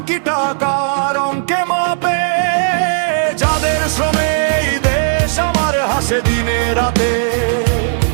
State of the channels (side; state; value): left; silent; digital silence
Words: কি টাকার অঙ্কে মাপে? যাদের শ্রমে এই দেশ আমার হাসে দিনে রাতে,